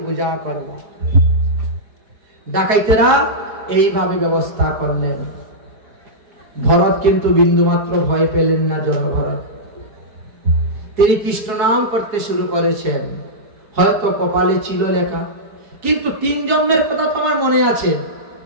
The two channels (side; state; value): left; late; 5.1 ms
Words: পূজা করব। ডাকাইতেরা এইভাবে ব্যবস্থা করলেন। ভরত কিন্তু বিন্দুমাত্র ভয় পেলেন না। জনভরত তিনি কৃষ্ণ নাম করতে শুরু করেছেন। হয়তো কপালে ছিল লেখা, কিন্তু 3 জন্মের কথা তোমার মনে আছে।